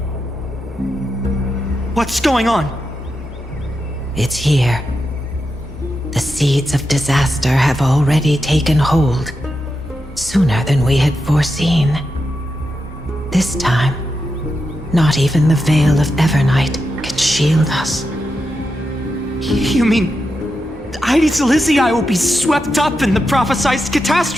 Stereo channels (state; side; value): normal; both; correlation 0.87